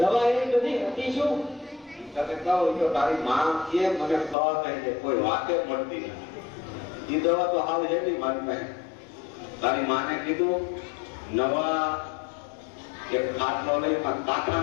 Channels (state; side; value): drops out; right; at 4.4 s